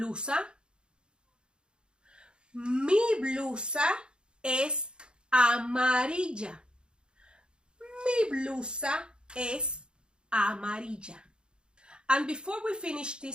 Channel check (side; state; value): left; late; 0.051 ms